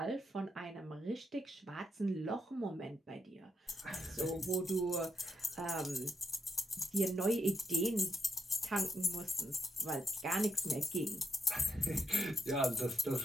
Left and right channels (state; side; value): normal; both; correlation 0.80